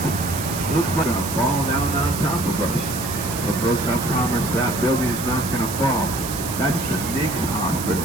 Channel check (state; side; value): noise; right; hiss, 7 dB below the sound